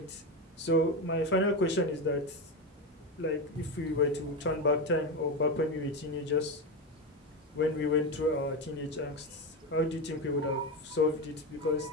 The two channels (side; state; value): both; normal; correlation 0.15